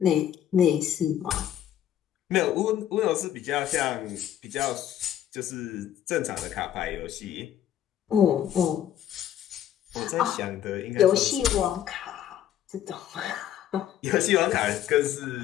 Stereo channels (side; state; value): right; quieter; 10.9 dB